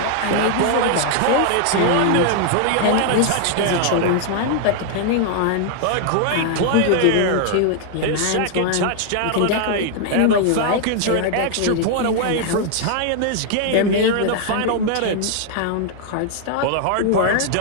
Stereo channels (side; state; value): both; different; correlation 0.00